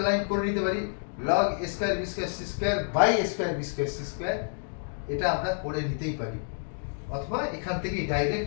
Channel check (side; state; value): right; silent; digital silence